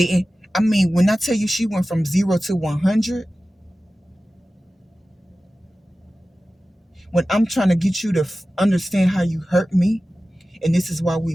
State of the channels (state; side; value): normal; both; correlation 0.95